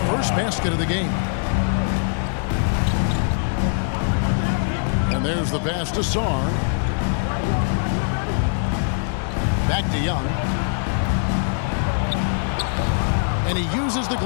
first basket of the game. And there's the pass to Sarr. Back to Young. And he uses the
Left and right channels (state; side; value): silent; right; 64 dB below the other